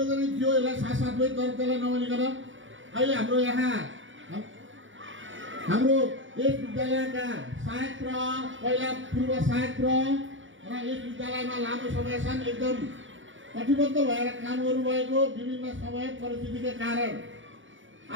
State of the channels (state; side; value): late; left; 0.56 ms